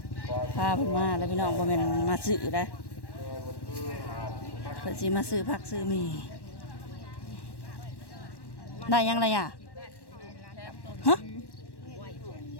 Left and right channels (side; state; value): right; late; 1.1 ms